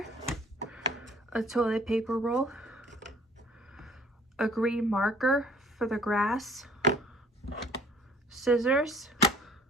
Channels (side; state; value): both; normal; correlation 0.53